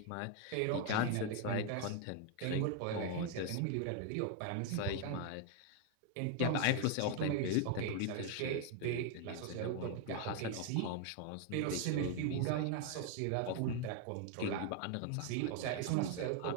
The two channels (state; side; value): different; both; correlation 0.01